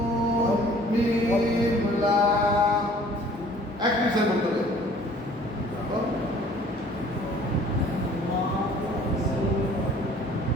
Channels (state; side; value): normal; both; correlation 0.53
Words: এক মিশন বলতে হবে।